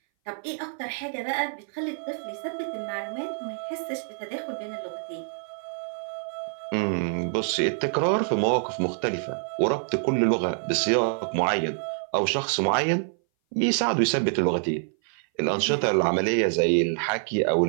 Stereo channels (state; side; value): silent; left; 58 dB below the other